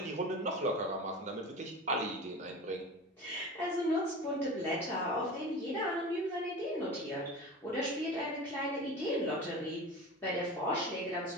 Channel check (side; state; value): both; normal; correlation 0.32